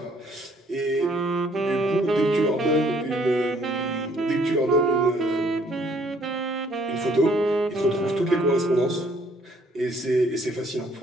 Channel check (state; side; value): normal; both; correlation 0.63